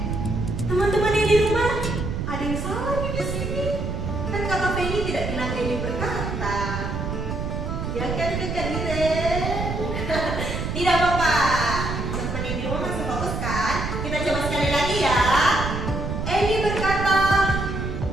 Teman-teman yang di rumah, ada yang salah nih di sini. Kan Kakak Feni tidak bilang Eli berkata. Ya kan Kakak Iren? Tidak apa-apa. Teman-teman yang di rumah masih fokus kan? Kita coba sekali lagi ya. Eli berkata,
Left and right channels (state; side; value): noise; right; rumble, 3 dB below the sound